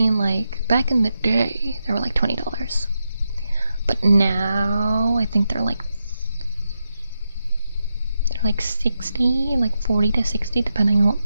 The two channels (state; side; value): inverted; both; correlation -0.86